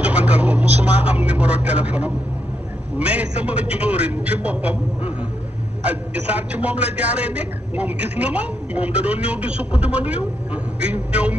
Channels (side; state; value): both; normal; correlation 0.81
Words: joxantal ko musuma am numéro téléphone am mais sama jóorin ci boppam Adji Sarr ci moom la jaaree nekk moom gis na ma moom da doon ñëw di sukk di ma nuyu di ñëw